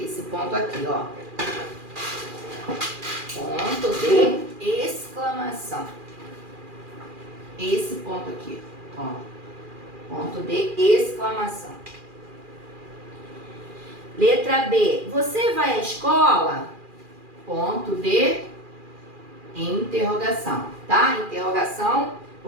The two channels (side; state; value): left; late; 2.4 ms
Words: ponto aqui, ó. Ponto de exclamação. Esse ponto aqui, ó. Ponto de exclamação. Letra B. Você vai à escola? Ponto de interrogação, tá? Interrogação,